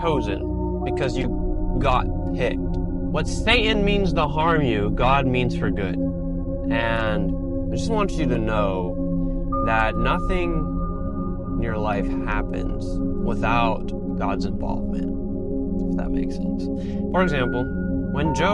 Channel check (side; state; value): both; identical; correlation 1.00